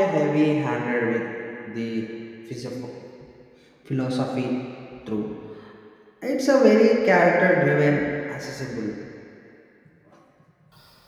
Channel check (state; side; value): identical; both; correlation 1.00